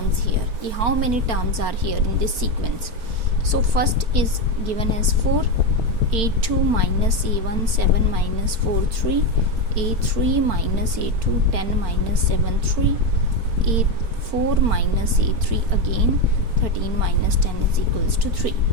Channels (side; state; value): left; late; 4.4 ms